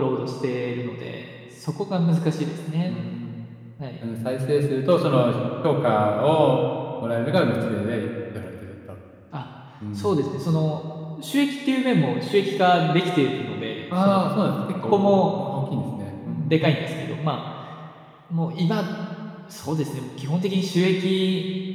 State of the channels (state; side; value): identical; both; correlation 1.00